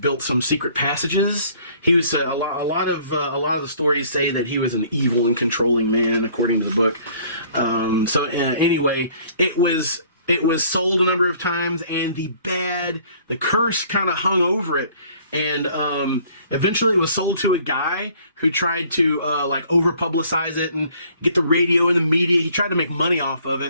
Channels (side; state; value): both; inverted; correlation -0.57